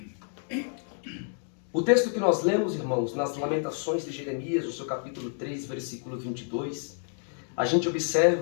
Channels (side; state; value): right; silent; 59 dB below the other